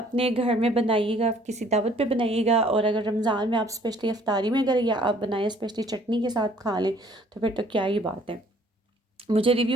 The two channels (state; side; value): normal; both; correlation 0.58